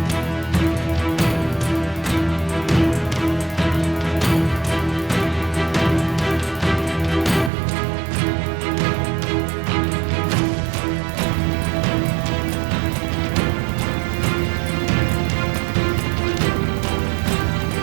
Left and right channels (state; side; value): drops out; left; at 7.5 s